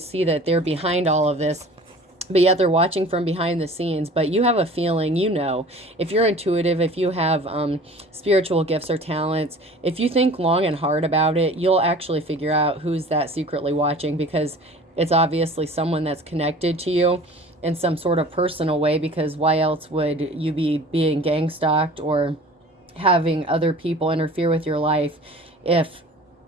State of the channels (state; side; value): normal; both; correlation 0.44